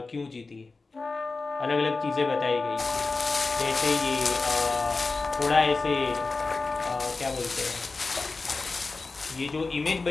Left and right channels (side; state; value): right; quieter; 3.8 dB